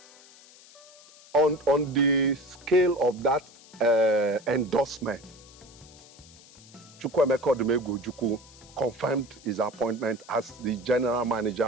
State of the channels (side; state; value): left; noise; hiss, 23 dB below the sound